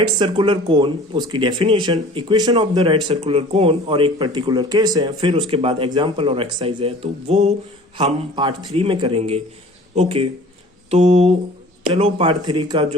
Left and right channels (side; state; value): both; normal; correlation 0.46